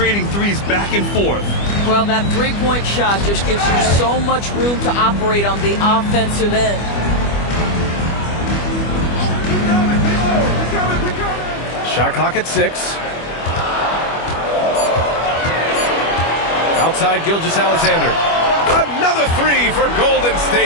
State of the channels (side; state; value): right; late; 25 ms